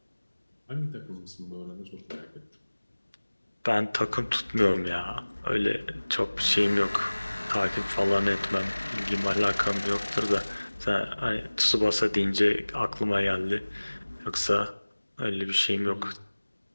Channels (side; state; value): both; inverted; correlation -1.00